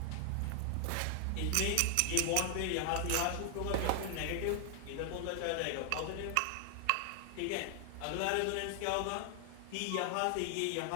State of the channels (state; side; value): different; both; correlation 0.00